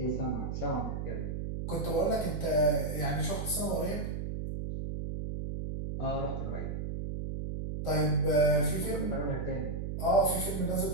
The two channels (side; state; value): right; noise; hum, 4 dB below the sound